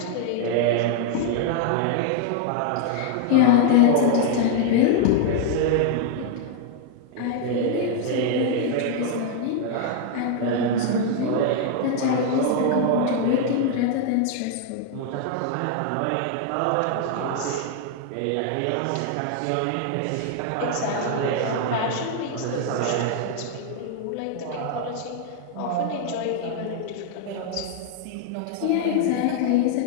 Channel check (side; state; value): both; different; correlation 0.00